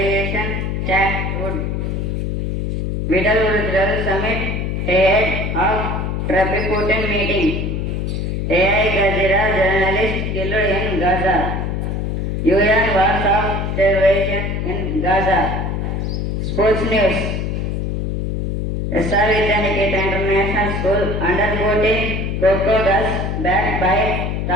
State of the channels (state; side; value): noise; left; hum, 1 dB below the sound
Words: chat would Vital Summit ahead of Triplicate meeting. AI Gazira journalist killed in Gaza. UN warns of starvation in Gaza. Sports news. SR Vidyaniketa International School under 14 Coco Girls backed by